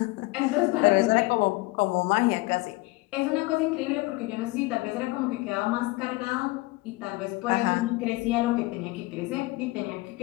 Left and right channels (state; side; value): quieter; right; 21.8 dB